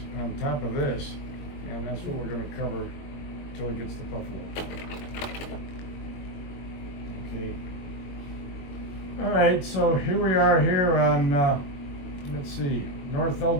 on top of this, and that's what we're going to cover until it gets to Buffalo. Okay. All right, so here we are here on, let's see, North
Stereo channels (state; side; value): late; right; 22 ms